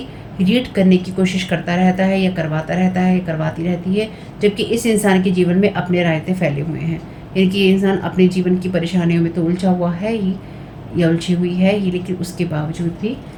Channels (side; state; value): both; identical; correlation 1.00